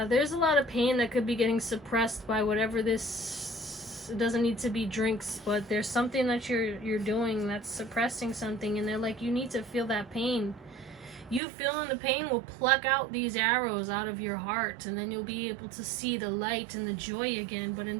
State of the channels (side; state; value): left; drops out; at 11.4 s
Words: there's a lot of pain that could be getting suppressed by whatever this. It doesn't need to be drinks, but there's something that you're doing that's suppressing something, and they're like, you need to feel that pain. You feeling the pain will pluck out these arrows out of your heart, and then you'll be able to see the light and the joy again. But